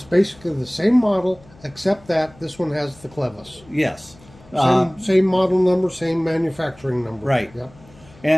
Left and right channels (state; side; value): noise; left; hum, 25 dB below the sound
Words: basically the same model, except that this one has the clevis. Yes. Same model number, same manufacturing number. Right. Yep.